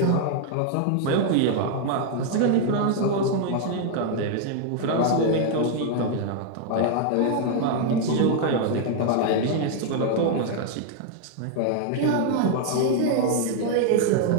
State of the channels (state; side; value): different; both; correlation 0.00